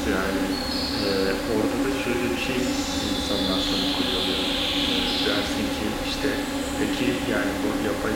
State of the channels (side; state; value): both; identical; correlation 1.00